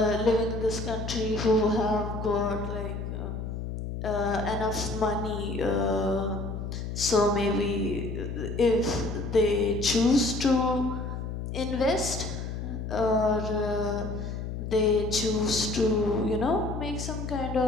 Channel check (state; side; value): noise; left; hum, 5 dB below the sound